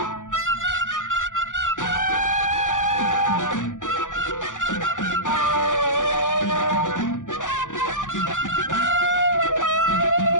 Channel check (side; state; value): right; late; 0.87 ms